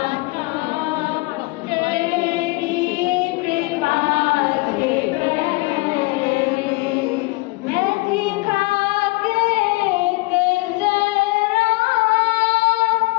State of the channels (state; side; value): quieter; right; 24.3 dB